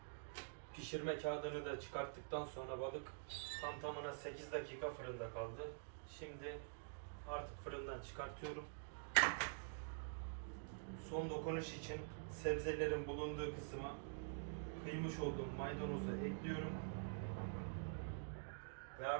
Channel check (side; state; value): left; silent; digital silence